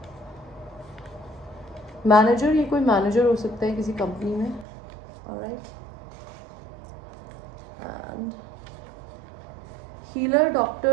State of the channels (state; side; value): drops out; left; at 4.7 s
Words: मैनेजर, ये कोई मैनेजर हो सकता है किसी कंपनी में. Alright. And healer,